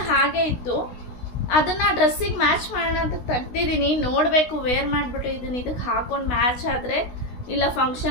ಹಾಗೆ ಇತ್ತು. ಅದನ್ನ ಡ್ರೆಸ್ಸಿಗೆ ಮ್ಯಾಚ್ ಮಾಡೋಣ ಅಂತ ತೆಗ್ದಿದ್ದೀನಿ. ನೋಡ್ಬೇಕು ವೇರ್ ಮಾಡ್ಬಿಟ್ಟು ಇದಕ್ಕೆ ಹಾಕೊಂಡು ಮ್ಯಾಚ್ ಆದ್ರೆ, ಇಲ್ಲ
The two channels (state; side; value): late; right; 16 ms